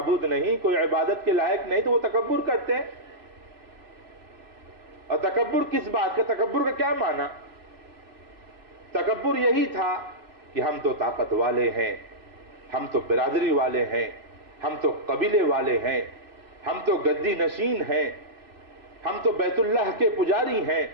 نہیں، کوئی عبادت کے لائق نہیں، تو وہ تکبر کرتے ہیں۔ اور تکبر کس بات کا؟ تکبر کا کیا معنی؟ تکبر یہی تھا کہ ہم تو طاقت والے ہیں، ہم تو برادری والے ہیں، ہم تو قبیلے والے ہیں، ہم تو گدی نشین ہیں، ہم تو بیت اللہ کے پجاری ہیں،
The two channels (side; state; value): left; late; 3.0 ms